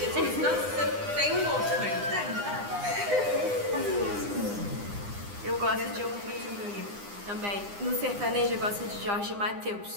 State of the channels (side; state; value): left; late; 9.8 ms